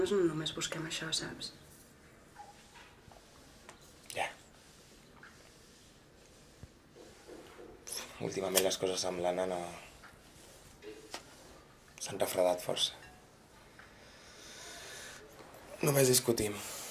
no només busquem això, saps? Ja. Últimament les coses amb l'Anna no... s'han refredat força. Només discutim.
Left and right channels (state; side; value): identical; both; correlation 1.00